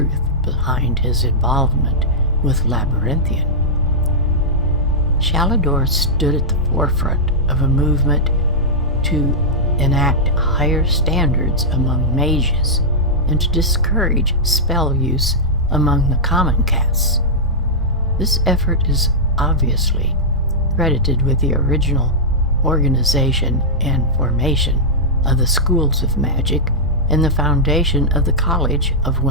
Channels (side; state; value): both; normal; correlation -0.10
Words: behind his involvement with Labyrinthian. Shalador stood at the forefront of a movement to enact higher standards among mages and to discourage spell use among the common castes. This effort is obviously credited with the original organization and formation of the schools of magic and the foundation of the College of